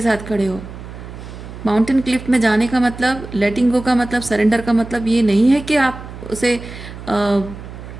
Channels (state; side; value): noise; right; hum, 13 dB below the sound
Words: साथ खड़े हो। माउंटेन क्लिफ में जाने का मतलब, लेटिंग गो का मतलब, सरेंडर का मतलब ये नहीं है कि आप उसे